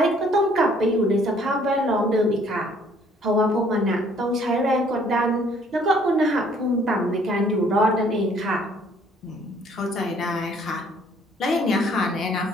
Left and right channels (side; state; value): both; normal; correlation 0.60